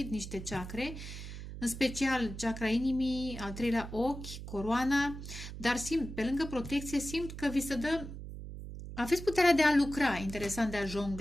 niște chakre, în special chakra inimii, al treilea ochi, coroana, dar simt, pe lângă protecție, simt că vi se dă, aveți puterea de a lucra, interesant, de a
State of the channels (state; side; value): noise; right; hum, 10 dB below the sound